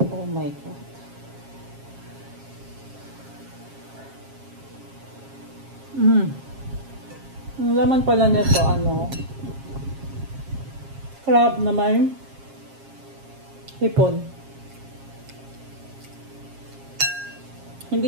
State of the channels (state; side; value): late; left; 7.4 ms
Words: Oh my God. Ang laman pala nito, crab na may hipon.